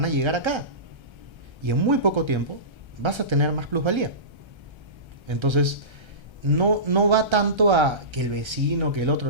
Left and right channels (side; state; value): left; late; 1.3 ms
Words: a llegar acá. Y en muy poco tiempo vas a tener más plusvalía. Entonces, no va tanto a que el vecino, que el